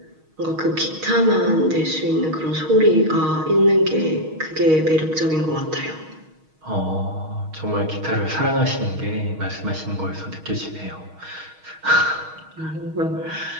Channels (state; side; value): late; left; 6.4 ms